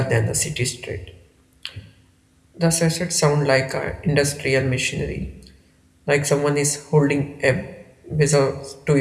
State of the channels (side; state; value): both; identical; correlation 1.00